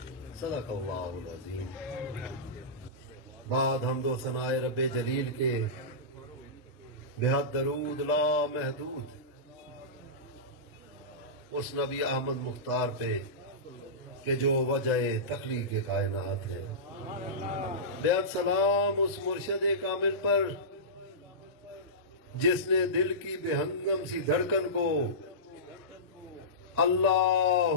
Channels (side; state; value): both; normal; correlation -0.18